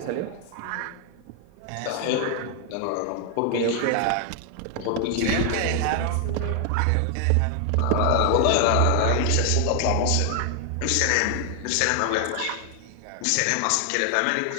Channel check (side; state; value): both; different; correlation 0.00